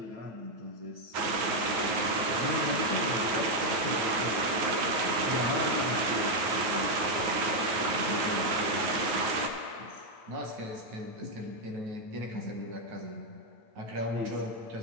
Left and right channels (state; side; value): late; left; 9.4 ms